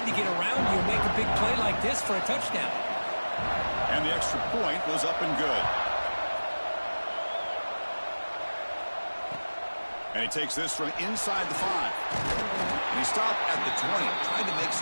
to get around you and make a big play like this for a touchdown. And the extra point was up and good. And he takes this from inside the 5. And he stopped at the 20, trying to make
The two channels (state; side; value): inverted; both; correlation -1.00